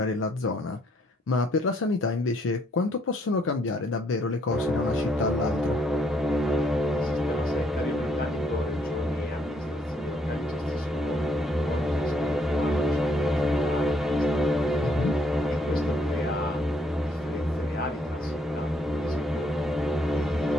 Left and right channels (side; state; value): both; normal; correlation 0.69